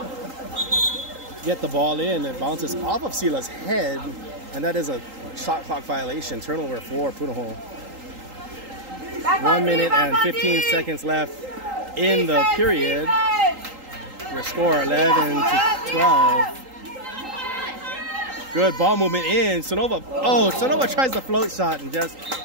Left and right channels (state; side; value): late; left; 3.8 ms